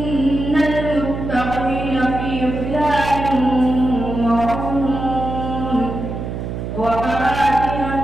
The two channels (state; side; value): noise; right; hum, 6 dB below the sound